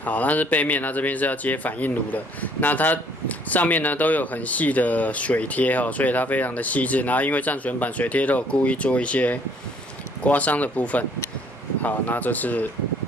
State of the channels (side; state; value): both; normal; correlation 0.61